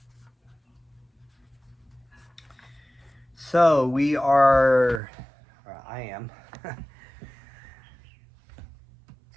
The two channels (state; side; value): drops out; left; at 5.0 s